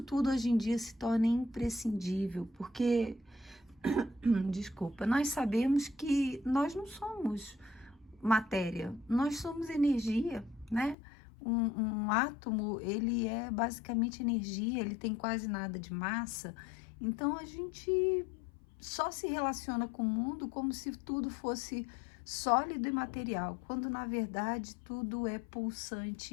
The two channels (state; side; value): drops out; right; at 11.0 s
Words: tudo hoje em dia se torna imprescindível, porque desculpa, nós sabemos que nós não somos matéria, nós somos energia, né? Um átomo, ele é basicamente energia, ele tem quase nada de massa, então a gente só se relaciona com o mundo como se tudo fosse sólido e material, quando na verdade tudo é